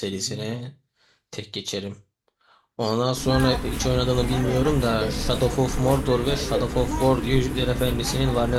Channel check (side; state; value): both; identical; correlation 1.00